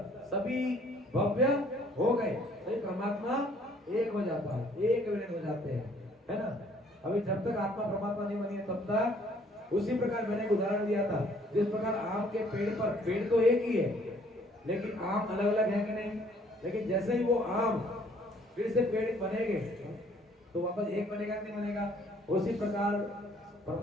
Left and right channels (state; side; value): normal; both; correlation 0.60